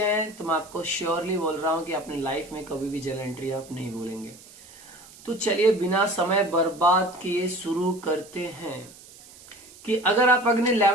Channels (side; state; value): right; noise; hiss, 21 dB below the sound